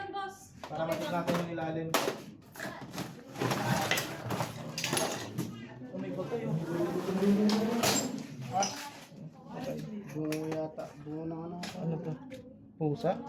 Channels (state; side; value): identical; both; correlation 1.00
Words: boss. Para matik natin yung ilalim. Umikot to yung. Bungo yata. Bungo na ano. Ano to? Pusa?